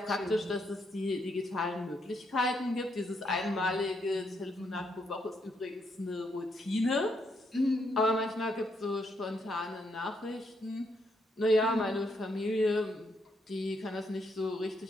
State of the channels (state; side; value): normal; both; correlation 0.76